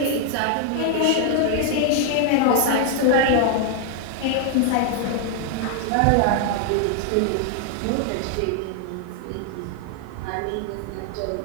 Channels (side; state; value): both; different; correlation 0.00